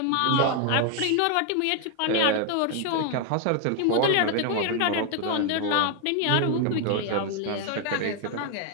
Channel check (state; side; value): different; both; correlation 0.01